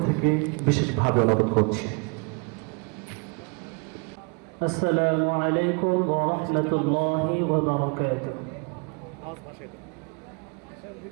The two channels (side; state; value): left; quieter; 33.4 dB